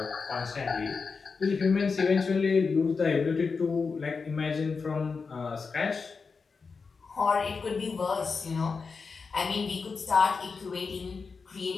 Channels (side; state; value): right; quieter; 4.9 dB